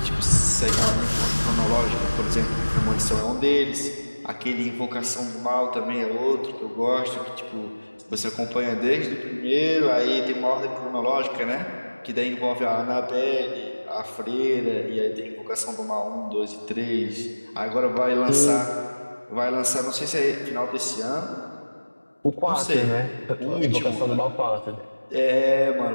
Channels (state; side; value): inverted; both; correlation -1.00